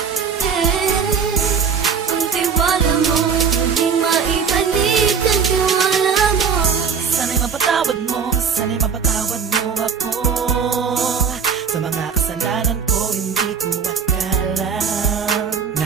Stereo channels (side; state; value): left; quieter; 6.4 dB